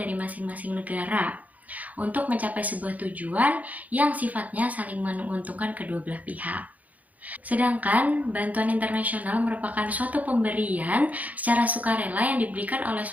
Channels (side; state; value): left; late; 0.075 ms